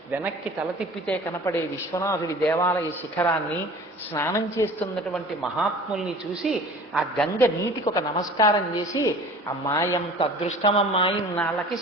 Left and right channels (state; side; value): normal; both; correlation 0.43